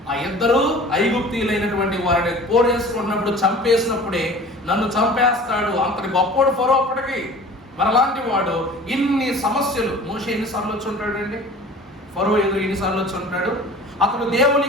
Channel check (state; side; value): normal; both; correlation 0.43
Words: ఆ ఇద్దరు ఐగుప్తీయులైనటువంటి వారిని పోరేసుకున్నప్పుడు చంపేసినప్పుడే నన్ను చంపేస్తాడు అంతటి గొప్పోడు ఫరో అప్పటికి. మరి అలాంటి వాడు ఇన్ని సమస్యలు మోషే ఎన్నిసార్లు వచ్చి ఉంటాడు అండి? ఫరో ఎదురు ఎన్నిసార్లు వచ్చి ఉంటాడు? అతడు దేవుని